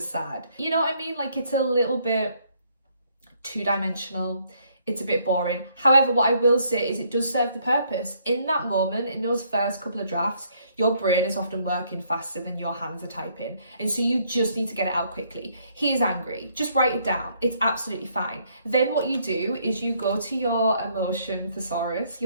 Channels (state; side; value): inverted; both; correlation -0.68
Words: sad. You know what I mean? Like, it's a little bit two-dimensional. It's a bit boring. However, what I will say is it does serve the purpose. In that moment, in those first couple of drafts, your brain is often working faster than your hands are typing. And so you just need to get it out quickly. He is angry. Just write it down. It's absolutely fine. Then what you do is you go to your Emotion Thesaurus,